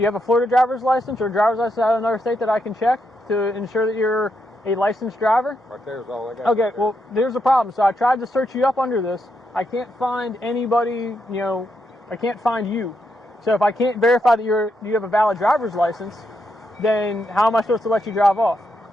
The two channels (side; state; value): both; normal; correlation 0.81